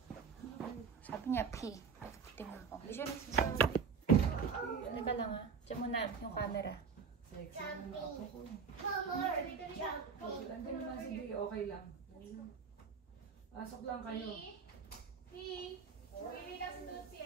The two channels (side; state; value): left; quieter; 5.9 dB